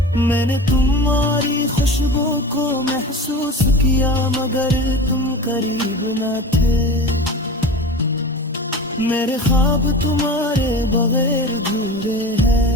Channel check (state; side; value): normal; both; correlation 0.33